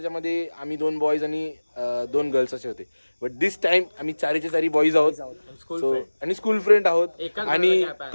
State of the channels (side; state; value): both; inverted; correlation -1.00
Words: आम्ही 2 बॉईज आणि 2 गर्ल्स असे होते, बट दिस टाइम आम्ही 4चे बॉईज आहोत. सो आणि स्कूल फ्रेंड आहोत. आणि